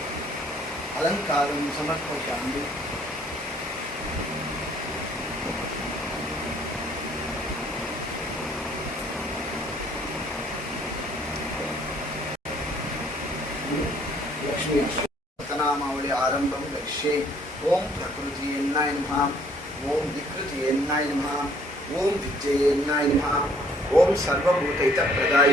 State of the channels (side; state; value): both; normal; correlation 0.61